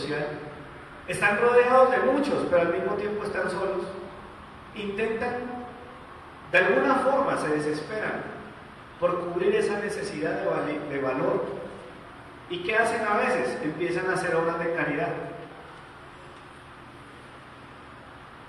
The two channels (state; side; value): identical; both; correlation 1.00